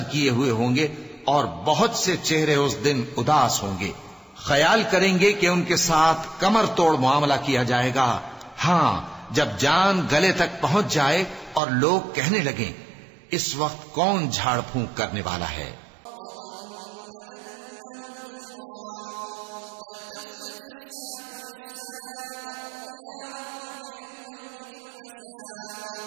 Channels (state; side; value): drops out; left; at 11.6 s